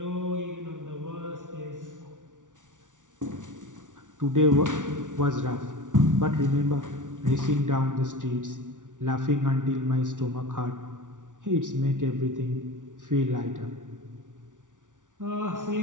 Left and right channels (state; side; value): late; left; 0.87 ms